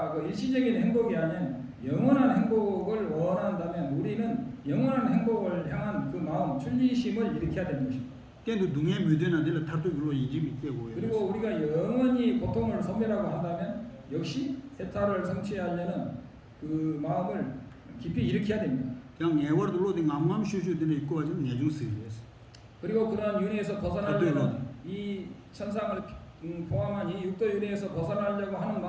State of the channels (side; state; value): both; identical; correlation 1.00